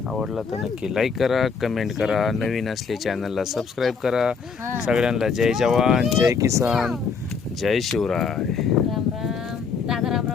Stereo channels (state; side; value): quieter; right; 5.5 dB